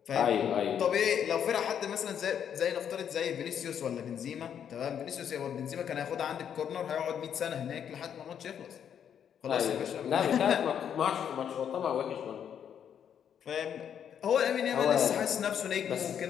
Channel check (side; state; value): right; quieter; 8.6 dB